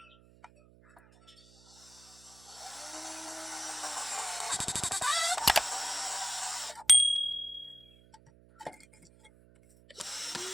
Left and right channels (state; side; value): noise; right; hum, 26 dB below the sound